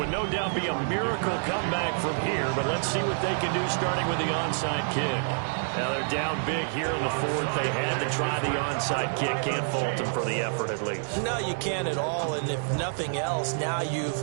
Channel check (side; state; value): left; silent; digital silence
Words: no doubt be a miracle comeback from here, but let's see what they can do starting with the onside kick. Now they're down big here in the 4th. They had to try the onside kick. Can't fault them for the effort at least. No, you can't at all. And if nothing else, now